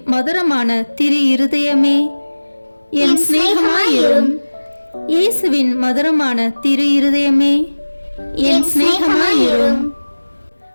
மதுரமான திரு இருதயமே என் சிநேகமாயிரும். இயேசுவின் மதுரமான திரு இருதயமே என் சிநேகமாயிரும்.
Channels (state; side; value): inverted; both; correlation -1.00